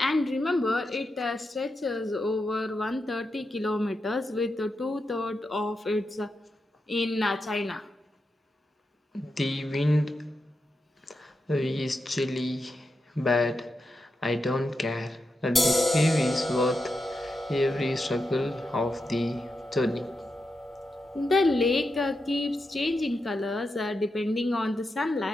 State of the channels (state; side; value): normal; both; correlation 0.87